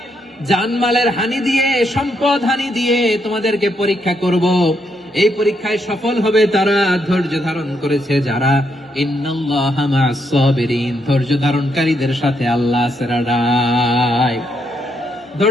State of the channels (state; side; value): normal; both; correlation 0.77